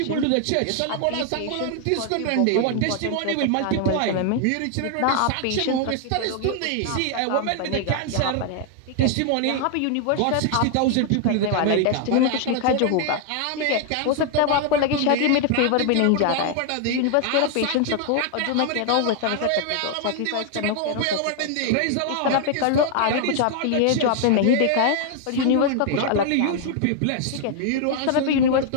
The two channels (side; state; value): both; different; correlation 0.00